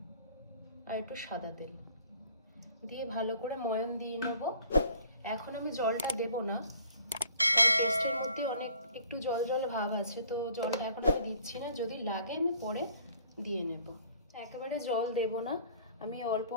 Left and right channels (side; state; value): both; inverted; correlation -0.55